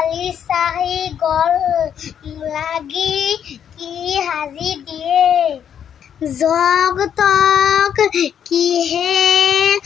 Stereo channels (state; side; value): quieter; right; 8.7 dB